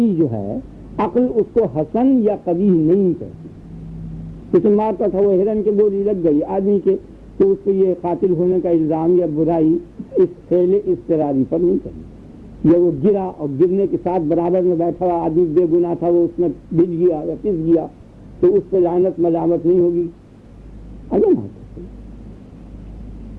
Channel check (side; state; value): both; identical; correlation 1.00